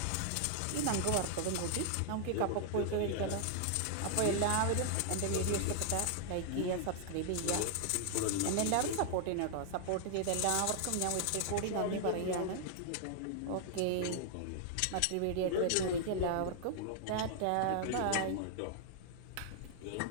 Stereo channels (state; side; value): different; both; correlation 0.00